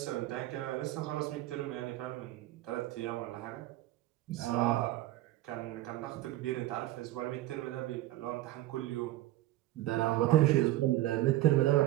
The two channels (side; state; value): left; quieter; 15.6 dB